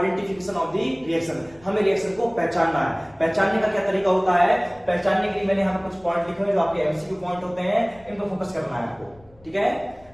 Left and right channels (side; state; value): left; noise; rumble, 27 dB below the sound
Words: ऑफ द रिएक्शन। हमें रिएक्शन को पहचानना है। पहचानने का क्या तरीका होता है, पहचानने के लिए मैंने यहाँ पर कुछ पॉइंट लिखे हुए जो आपके एमसीक्यू पॉइंट होते हैं, इन पर फोकस करना है आपको। ठीक है,